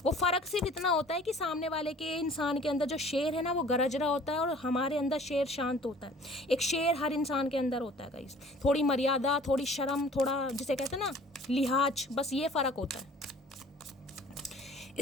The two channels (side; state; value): both; normal; correlation 0.50